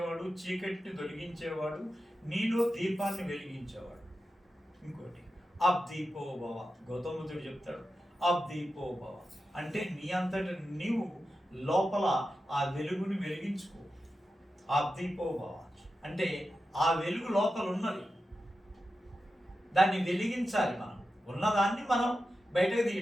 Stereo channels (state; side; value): normal; both; correlation 0.91